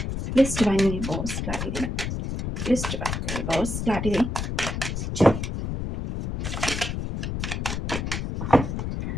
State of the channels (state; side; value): noise; left; rumble, 3 dB below the sound